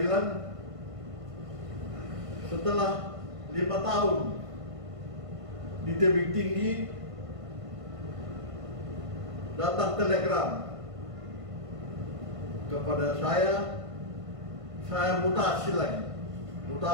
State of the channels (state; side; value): late; left; 1.5 ms